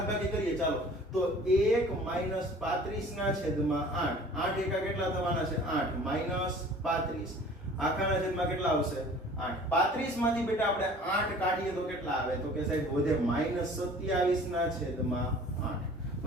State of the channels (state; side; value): normal; both; correlation 0.48